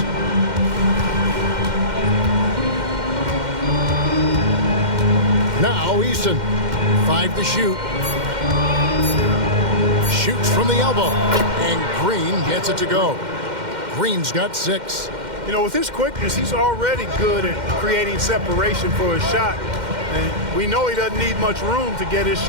Now Easton. 5 to shoot. Shoots from the elbow. And Green gets it to go. Green's got 6. You know, with his quickness, he's already good at creating separation for his shot. And we know he doesn't need much room to get his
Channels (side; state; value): left; late; 2.1 ms